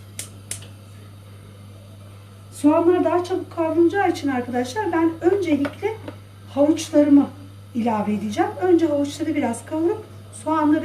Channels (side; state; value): both; identical; correlation 1.00